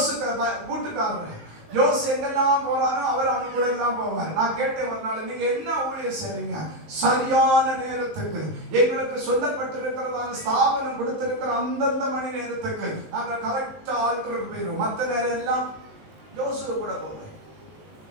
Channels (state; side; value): late; left; 19 ms